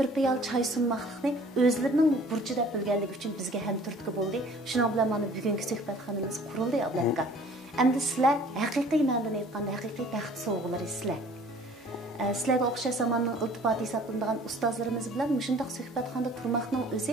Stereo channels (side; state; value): both; normal; correlation 0.52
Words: piyol choy sunmoqlikni o'zlarining burchi deb bilganligi uchun bizga ham turtki bo'ldi. Shuning bilan mana bugungi suhbatxonamiz qurildi, Abdulaka. Endi sizlar haqiqiy ma'noda aytganda haqiqiy baxt sovg'alari sizlar. Sizlarga o'xshash zamonning iltifoti hisoblanadigan ustozlarimiz bilan shunday suhbatxonada turmoqning